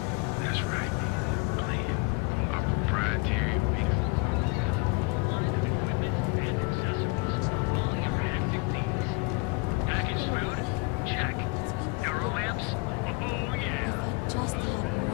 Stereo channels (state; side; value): quieter; right; 29.1 dB